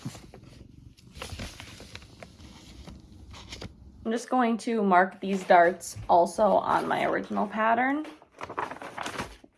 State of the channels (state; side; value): identical; both; correlation 1.00